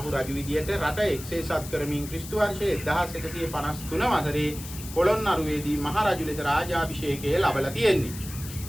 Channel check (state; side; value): noise; left; hiss, 13 dB below the sound